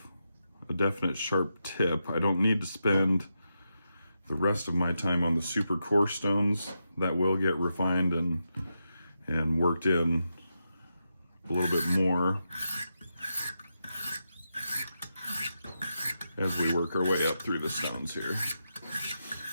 a definite sharp tip, I don't need to spend the rest of my time on the super coarse stones. That will get refined and worked in a little bit more as we work our way up through the stones here.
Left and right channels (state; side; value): inverted; both; correlation -0.87